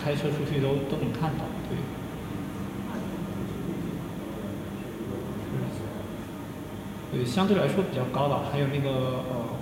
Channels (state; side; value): identical; both; correlation 1.00